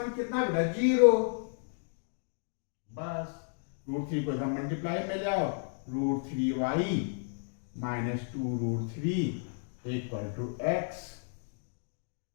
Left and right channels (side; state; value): right; silent; digital silence